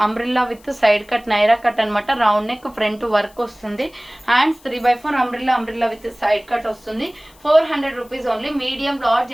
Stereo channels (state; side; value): noise; left; hiss, 28 dB below the sound